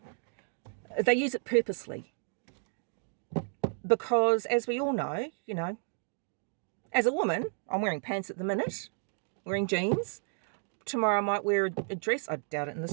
use it purposely. Because, as we all know, as a woman, I'm wearing pants at the minute, wearing jeans. Tomorrow I might wear a dress. I doubt it in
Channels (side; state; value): left; silent; 56 dB below the other